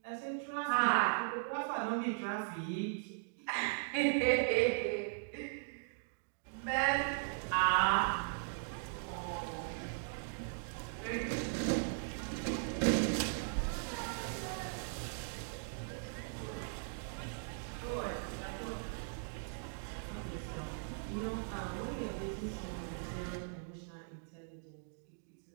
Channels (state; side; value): silent; left; digital silence